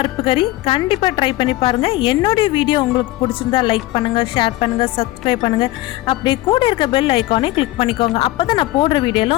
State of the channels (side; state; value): right; quieter; 17.7 dB